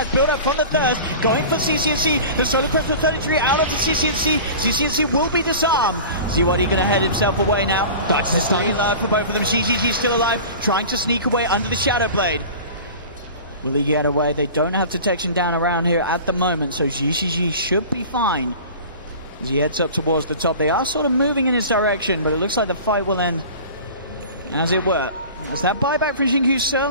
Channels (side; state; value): both; inverted; correlation -0.38